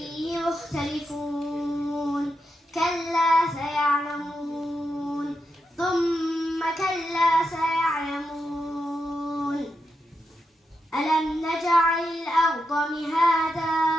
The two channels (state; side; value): normal; both; correlation 0.86